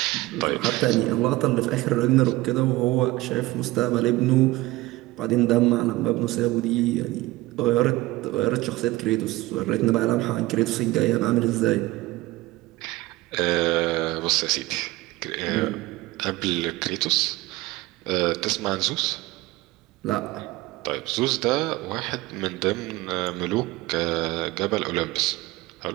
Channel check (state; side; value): quieter; left; 19.3 dB